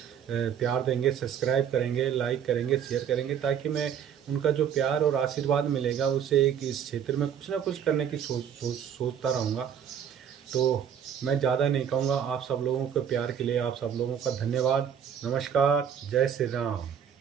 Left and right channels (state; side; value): quieter; left; 8.4 dB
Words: प्यार देंगे, सब्सक्राइब करेंगे, लाइक करेंगे, शेयर करेंगे, ताकि मैं उनका जो प्यार और आशीर्वाद मिलेगा उससे एक इस क्षेत्र में कुछ ना कुछ करने की सोचता रहूँगा। तो मैं ज़्यादा नहीं कहूँगा। आप सब लोगों के प्यार के लिए आप सब लोगों का धन्यवाद। नमस्कार, जय श्री राम।